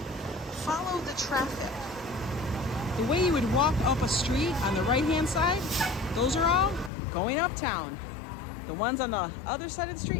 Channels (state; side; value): drops out; right; at 6.9 s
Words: Follow the traffic. The way you would walk up a street on the right-hand side, those are all going uptown. The ones on the other side of the